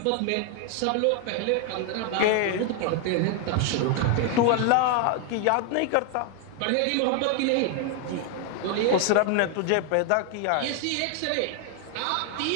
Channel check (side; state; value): both; different; correlation 0.00